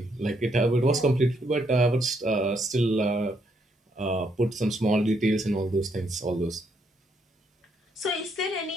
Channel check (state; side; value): normal; both; correlation 0.74